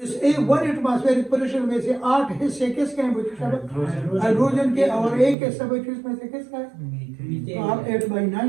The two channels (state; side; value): drops out; left; at 5.4 s